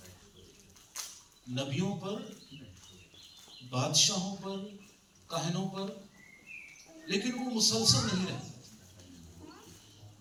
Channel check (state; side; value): identical; both; correlation 1.00